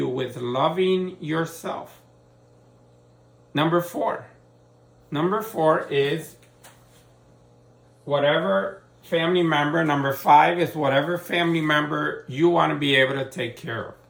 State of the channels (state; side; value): identical; both; correlation 1.00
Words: with loving yourself. Number 4. Number 4 is whatever family member. Number 5 is whatever family member you want to be able to take care of.